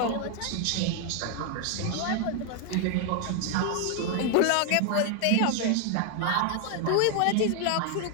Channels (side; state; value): both; different; correlation 0.00